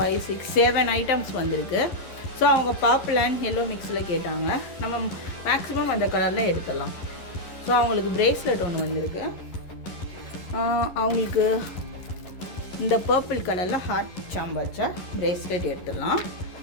5 6 7 ஐட்டம்ஸ் வந்திருக்கு. ஸோ அவங்க பர்பிள் அண்ட் எல்லோ மிக்ஸில் கேட்டாங்க. நம்ம மேக்ஸிமம் அந்த கலரில் எடுத்துடலாம். ஸோ அவங்களுக்கு ப்ரேஸ்லெட் ஒன்று வந்திருக்கு. அவங்களுக்கு இந்த பர்பிள் கலரில் ஹார்ட் சாம்பு வச்ச ப்ரேஸ்லெட் எடுத்துடலாம்.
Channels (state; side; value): late; right; 11 ms